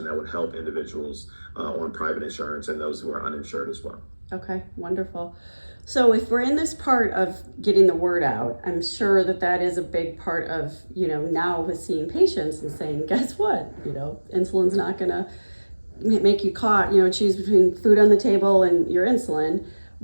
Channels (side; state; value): both; inverted; correlation -1.00